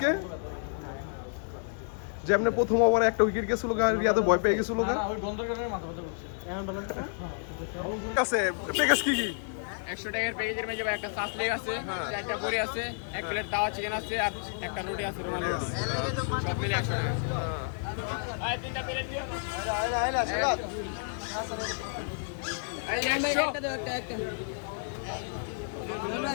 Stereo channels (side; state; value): right; silent; 57 dB below the other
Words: যেমনি প্রথম ওভারে একটা উইকেট গেছিল গা, রিয়াদে ভয় পেয়ে গেছিল গা। আছে প্যাকেজ কি কি? 100 টাকার প্যাকেজের মধ্যে একটা সাস লেগ আছে, একটা বড়ি আছে, এক প্লেট তাওয়া চিকেন আছে আর একটা রুটি আছে রুমালি রুটি। সব মিলে 100 টাকা। ভাই তিনটা প্লেট দিও। এই 100